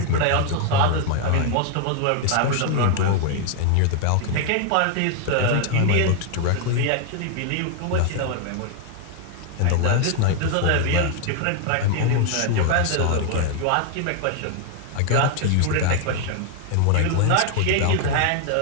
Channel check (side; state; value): both; different; correlation 0.00